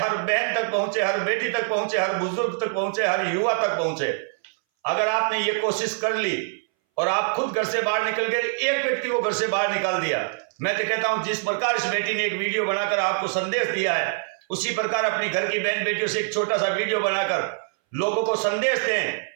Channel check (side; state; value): left; silent; 61 dB below the other